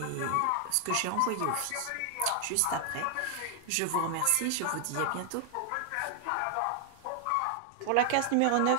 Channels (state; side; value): different; both; correlation 0.00